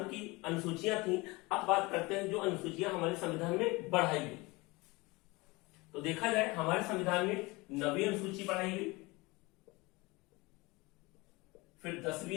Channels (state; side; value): quieter; right; 23.7 dB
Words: की अनुसूचियां थी। अब बात करते हैं जो अनुसूचियां हमारे संविधान में बढ़ाई गई। तो देखा जाए हमारे संविधान में 9वीं अनुसूची बढ़ाई गई, फिर